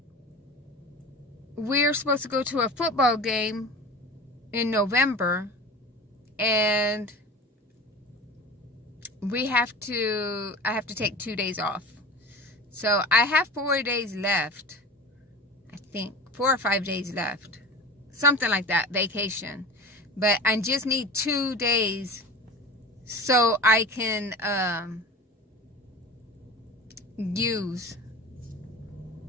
we're supposed to go to a football game in November, and I have to take 2 days off. So I have 4 days left. I think 4 or 5 days left. Something like that, vacation. But I just need 2 days so I can I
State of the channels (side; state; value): both; normal; correlation 0.34